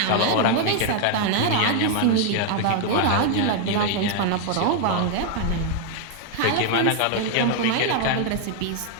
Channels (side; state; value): both; different; correlation 0.00